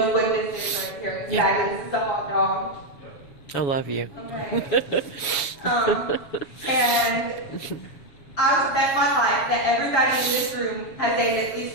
what this is right here. Yeah. This is a hot dog. I love you. Okay. And I would bet my life that everybody in this room has ate at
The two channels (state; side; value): late; right; 7.2 ms